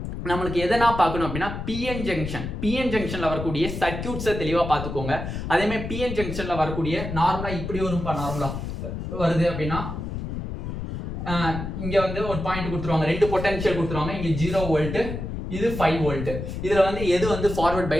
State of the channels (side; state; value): left; noise; rumble, 6 dB below the sound